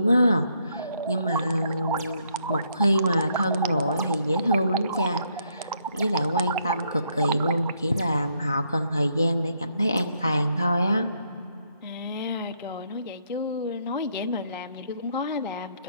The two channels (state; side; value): inverted; both; correlation -0.73